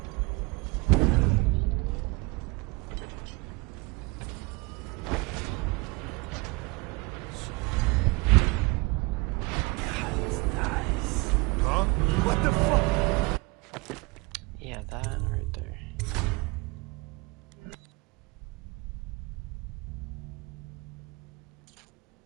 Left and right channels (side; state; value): left; quieter; 26.0 dB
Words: Huh? What the fuck? Yeah, that right there.